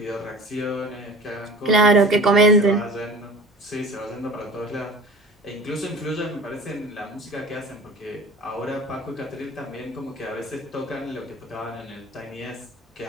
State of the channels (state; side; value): normal; both; correlation 0.40